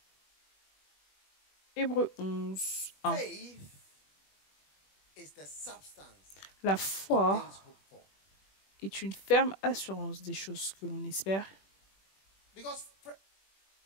Hébreux 11, 1. La foi est une ferme assurance des choses que l'on espère.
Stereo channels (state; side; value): late; right; 21 ms